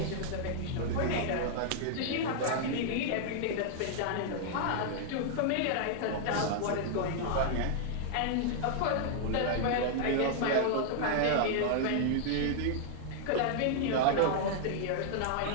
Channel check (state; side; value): different; both; correlation -0.01